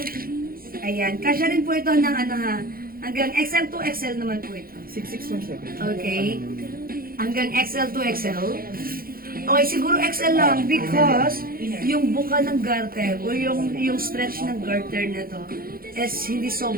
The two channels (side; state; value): left; late; 0.42 ms